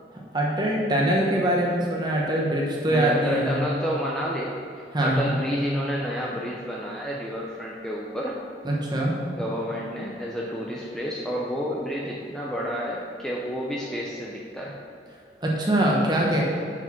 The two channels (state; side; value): normal; both; correlation 0.58